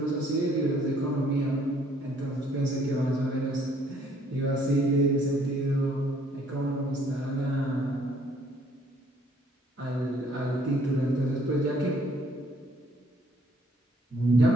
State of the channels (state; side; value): normal; both; correlation 0.63